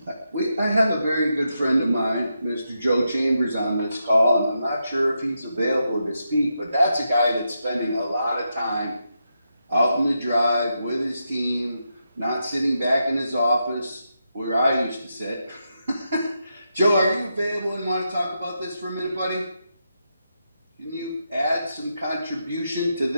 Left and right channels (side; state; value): both; inverted; correlation -0.85